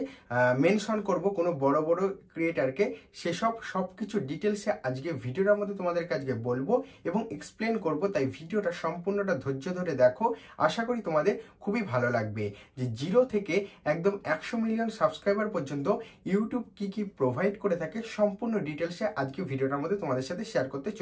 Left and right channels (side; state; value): both; identical; correlation 1.00